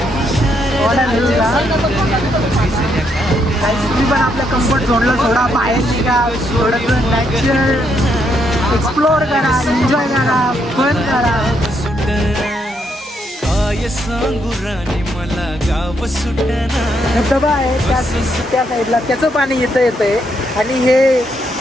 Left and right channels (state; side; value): normal; both; correlation 0.76